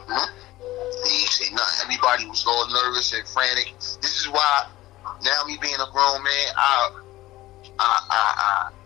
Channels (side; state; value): right; quieter; 17.0 dB